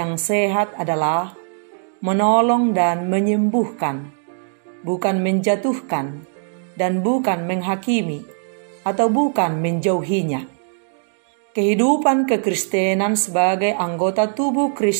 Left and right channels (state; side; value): silent; left; 58 dB below the other